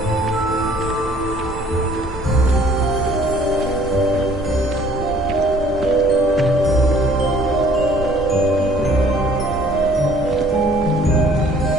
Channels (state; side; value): normal; both; correlation 0.57